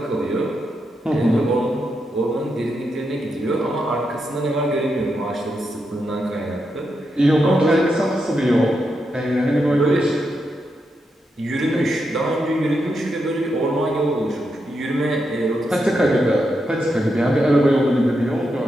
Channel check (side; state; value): both; normal; correlation 0.84